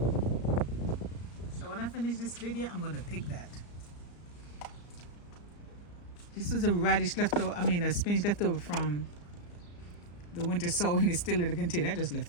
So when I finish this video, I'm gonna pick that. This was a radish leftover, a spinach leftover from the winter sowing. It's still in the container. I just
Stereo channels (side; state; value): right; late; 34 ms